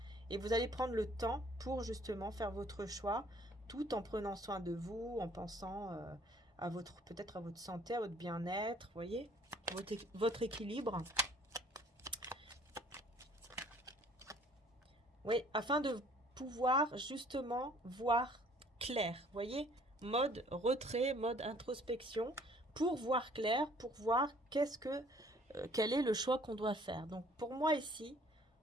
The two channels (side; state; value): both; normal; correlation 0.57